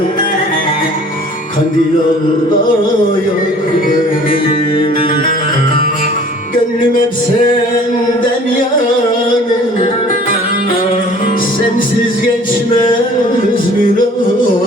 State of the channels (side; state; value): both; normal; correlation 0.50